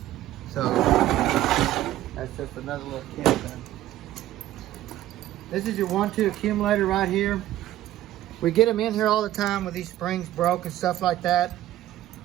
So that's just another little tip there. This is your 1-2 accumulator right here. We get them in here all the time with these springs broke and stuff like that.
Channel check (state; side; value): quieter; left; 13.9 dB